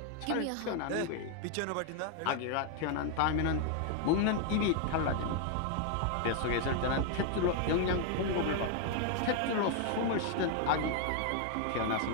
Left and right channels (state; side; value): different; both; correlation 0.00